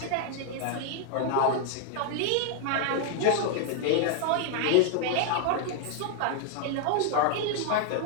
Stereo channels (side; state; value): both; different; correlation 0.00